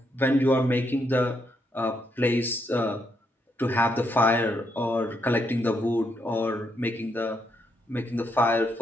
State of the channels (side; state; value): both; normal; correlation 0.78